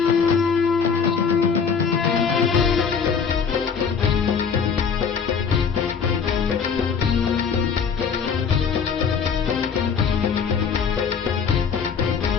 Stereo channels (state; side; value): quieter; right; 6.3 dB